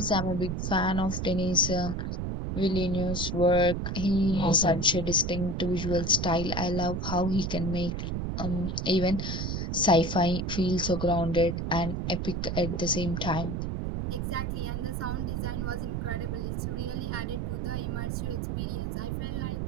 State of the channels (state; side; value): noise; right; rumble, 2 dB below the sound